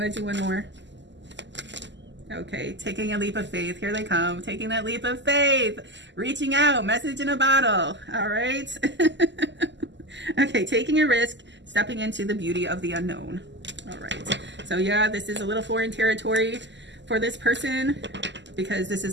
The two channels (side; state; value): left; late; 0.53 ms